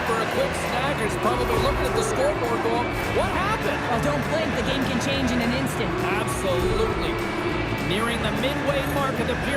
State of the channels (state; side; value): identical; both; correlation 1.00